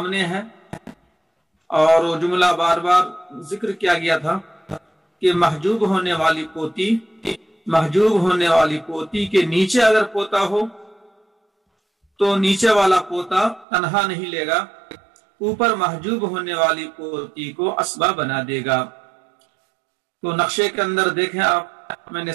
ہے، اور وہ جملہ بار بار ذکر کیا گیا تھا کہ محجوب ہونے والی پوتی کے نیچے اگر پوتا ہو تو نیچے والا پوتا تنہا نہیں لے گا، اوپر محجوب ہونے والی پوتی کو اسبا بنا دے گا۔ تو نقشے کے اندر دیکھیں آپ، میں نے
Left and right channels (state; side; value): drops out; left; at 13.7 s